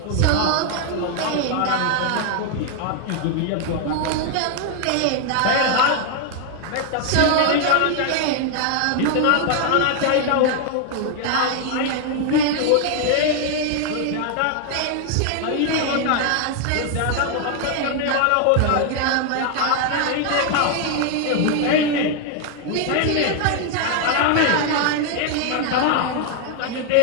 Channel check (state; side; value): different; both; correlation 0.00